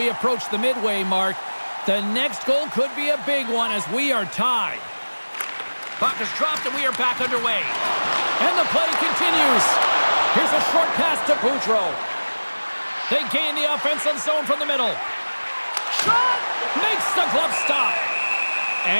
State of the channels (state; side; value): inverted; both; correlation -1.00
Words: approach the midway mark. The next goal could be a big one as we are tied. Puck is dropped and we are back underway. And the play continues. Here's a short pass to Boudreau. They gain the offensive zone from the middle. Shot! Makes the glove stop.